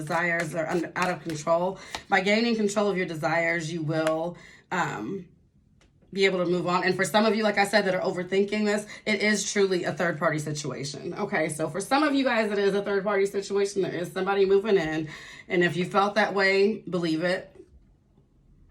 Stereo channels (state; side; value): identical; both; correlation 1.00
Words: are out of control. By gaining control of your desires, you will be able to move on. And for some of you, like I said, that are overthinking this, it is truly a third-party situation. Okay, so for some of you guys, it is a third-party situation. There is somebody moving in. And if you felt that way, believe it.